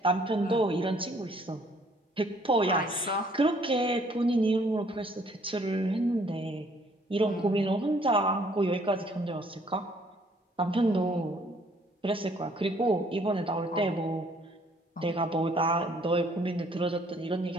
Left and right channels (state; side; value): normal; both; correlation 0.62